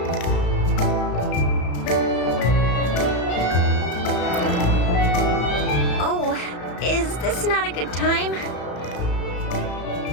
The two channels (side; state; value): right; late; 34 ms